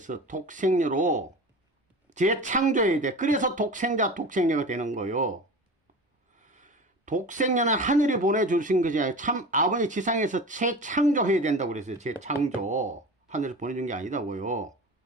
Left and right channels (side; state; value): both; normal; correlation 0.33